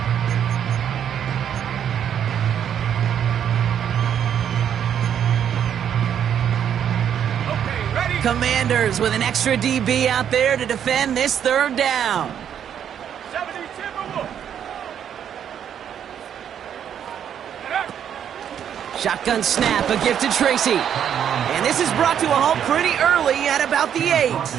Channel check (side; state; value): left; quieter; 9.0 dB